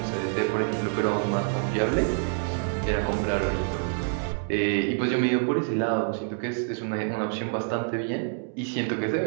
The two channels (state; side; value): silent; left; 60 dB below the other